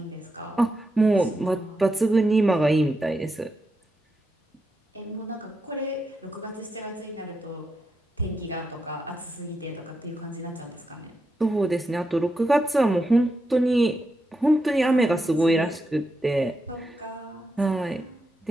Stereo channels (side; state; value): both; normal; correlation 0.85